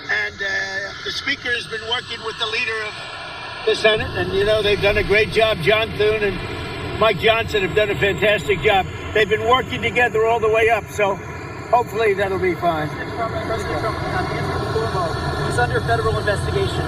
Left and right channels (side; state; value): both; identical; correlation 1.00